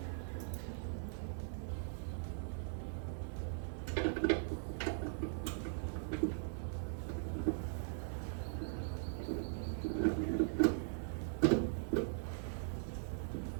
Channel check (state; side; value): silent; left; 51 dB below the other